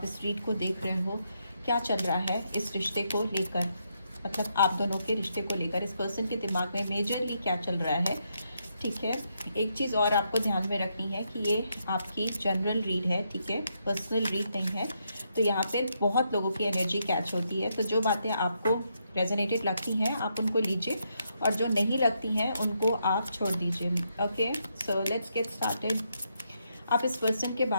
इस रीड को देख रहे हो क्या चल रहा है इस रिश्ते को लेकर, मतलब आप दोनों के रिश्ते को लेकर इस पर्सन के दिमाग में मेजरली क्या चल रहा है। ठीक है, एक चीज़ और आपको ध्यान में रखनी है कि ये आपकी जनरल रीड है, ठीक है, पर्सनल रीड नहीं है। तो यहाँ पे बहुत लोगों की एनर्जी कैच होती है, तो जो बातें आपको रेजोनेटेड लगती हैं आप उनको लीजिए और जो नहीं लगती हैं उनको आप छोड़ दीजिए। Okay, so let's get started. आप इस पर्सन के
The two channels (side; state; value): both; inverted; correlation -0.79